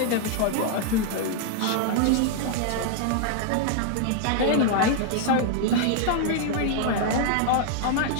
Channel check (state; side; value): different; both; correlation 0.00